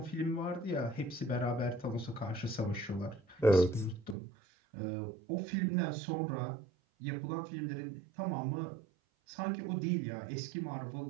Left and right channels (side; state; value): left; drops out; at 4.2 s